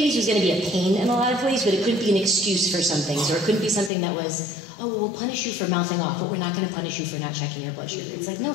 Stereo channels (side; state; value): right; drops out; at 3.9 s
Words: be a pain in a lot of ways, but it couldn't be an excuse for some things, or it couldn't be something that was, oh, well, we'll punish you for mouthing off, but we're not going to punish you for not checking your blood sugar. It's like, no,